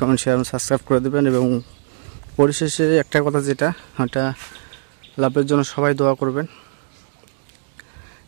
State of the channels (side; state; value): left; silent; digital silence